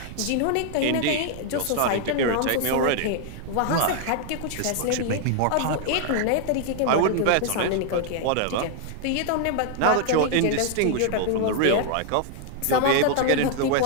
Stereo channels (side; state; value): both; different; correlation 0.00